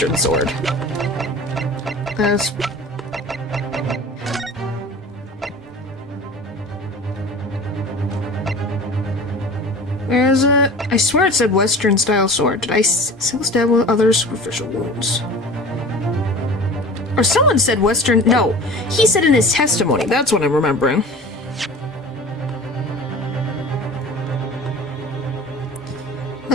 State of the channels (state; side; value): normal; both; correlation 0.38